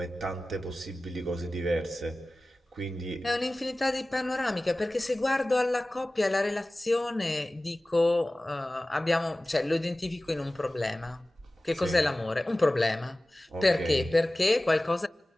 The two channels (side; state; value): both; normal; correlation 0.97